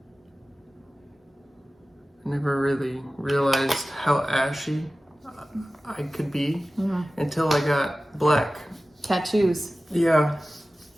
I never really realized how ashy I could be until I got black tattoos. Yeah,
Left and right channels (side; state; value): both; normal; correlation 0.96